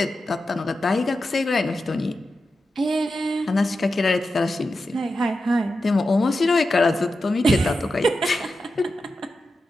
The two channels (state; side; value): normal; both; correlation 0.90